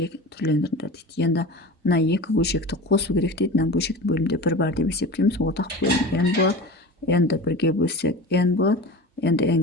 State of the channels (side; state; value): both; normal; correlation 0.33